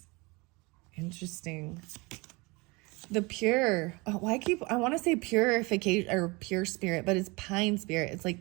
Interesting. The pure. Oh, I want to say purification or pure spirit, but it's pine spirit. It's like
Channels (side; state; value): left; quieter; 26.0 dB